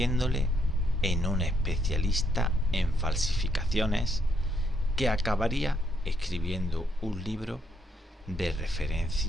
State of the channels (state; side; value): normal; both; correlation 0.73